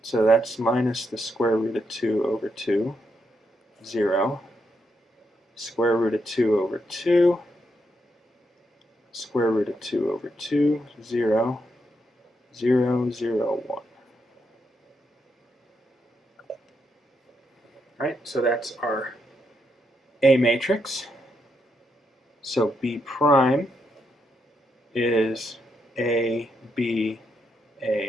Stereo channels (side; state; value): both; normal; correlation 0.80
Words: that's minus the square root of 2 over 2, 0, square root of 2 over 2, square root of 2 over 2, 0, 0, 0, 1. Right, so that's our A matrix. So B prime is A, B,